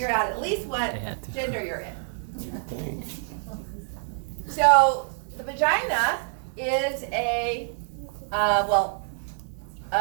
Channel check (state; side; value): silent; left; digital silence